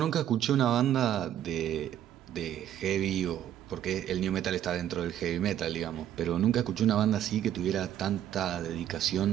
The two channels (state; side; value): quieter; left; 10.9 dB